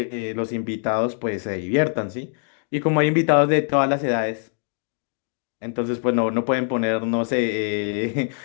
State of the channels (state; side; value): silent; right; 56 dB below the other